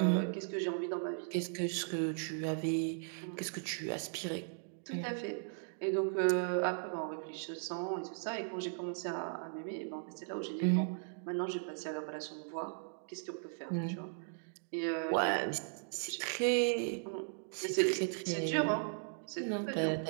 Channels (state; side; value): silent; left; digital silence